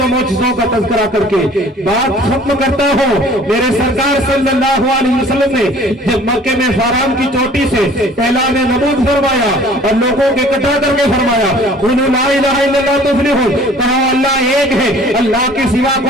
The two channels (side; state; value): both; normal; correlation 0.51